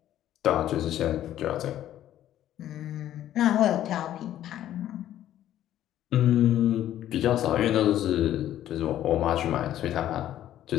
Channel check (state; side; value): quieter; right; 12.2 dB